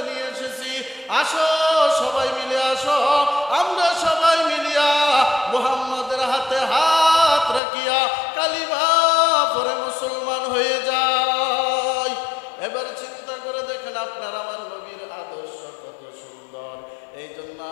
নিয়ে এসেছি। আসো, সবাই মিলে আসো, আমরা সবাই মিলিয়া মুহাম্মদের হাতে হাত রাখিয়া কালিমা পড়ে মুসলমান হয়ে যাই। এবার চিন্তা করে দেখেন আপনার আমার নবীর আদর্শ কত সুন্দর। এই জন্য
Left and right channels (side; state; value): right; drops out; at 7.6 s